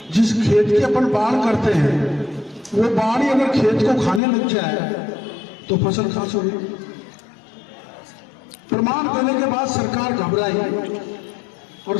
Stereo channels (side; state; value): right; drops out; at 4.2 s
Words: जिस खेत की अपन बाढ़ करते हैं वो बाढ़ अगर खेत को खाने लग जाए तो फसल कहां से होगी? प्रमाण देने के बाद सरकार घबराई और